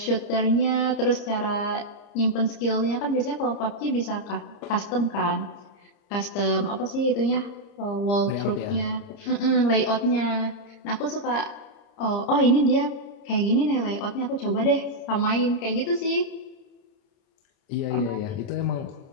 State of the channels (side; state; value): right; late; 30 ms